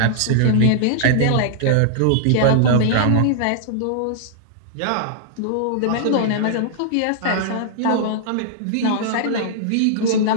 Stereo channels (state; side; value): different; both; correlation -0.01